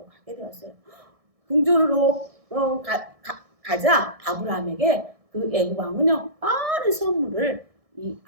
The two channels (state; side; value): late; left; 1.6 ms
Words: 가게 되었어요. 궁전으로 가자 아브라함에게 그 애굽 왕은요 많은 선물을 이